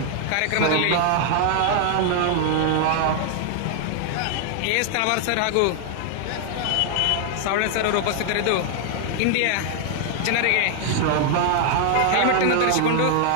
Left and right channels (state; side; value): different; both; correlation 0.00